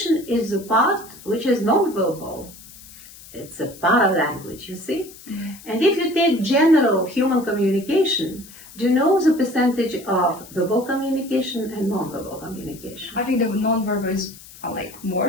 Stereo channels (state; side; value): noise; left; hiss, 19 dB below the sound